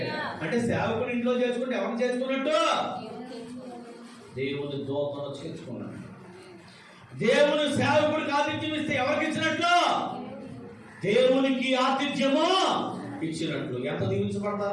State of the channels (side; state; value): both; identical; correlation 1.00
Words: అంటే సేవకుని ఇంట్లో చేసుకుంటే ఎవరిని చేసుకున్నట్టు? దేవుని దూతను చేర్చుకున్నాడు. దేవుని సేవకుడికి ఆతిథ్యం ఇస్తే ఎవరికి ఇచ్చినట్లు? దేవునికి ఆతిథ్యము ఇచ్చినట్లు. ఎంత